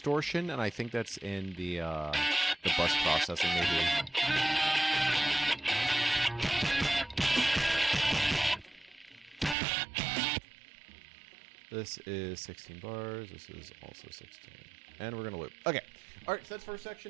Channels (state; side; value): drops out; left; at 9.6 s